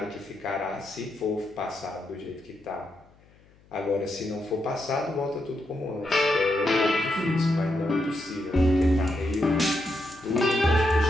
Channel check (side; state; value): left; noise; hum, 29 dB below the sound